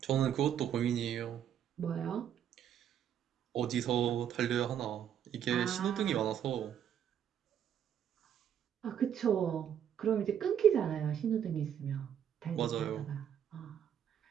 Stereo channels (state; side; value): quieter; left; 9.3 dB